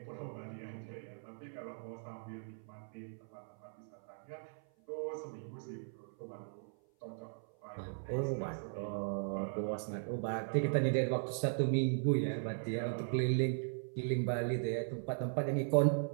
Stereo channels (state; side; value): silent; left; 52 dB below the other